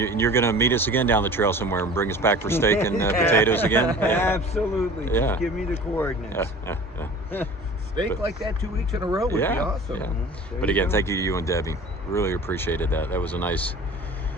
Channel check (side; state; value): both; normal; correlation 0.43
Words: going to meet us again down the trail somewhere and bring us back for steak and potatoes again? Yeah. Absolutely. Yeah. Just give me the coordinates. Steak like that 2 weeks in a row would be awesome. Yeah. But again, thank you to you and Debbie. Really appreciated that. That was a nice